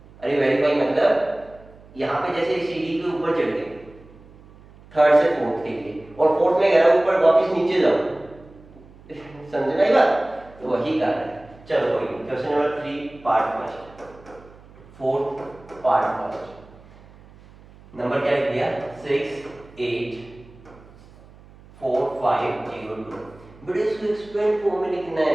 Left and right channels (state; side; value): noise; right; hum, 23 dB below the sound